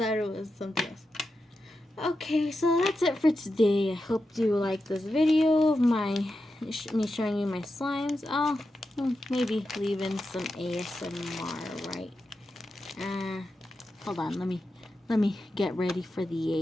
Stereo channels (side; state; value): both; normal; correlation 0.89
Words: it was something else. Okay, so that's it for today. I hope you like this video of me showing you my slimes. Oh, maybe leave in some ASMR, right? Hold on. Let me get ready for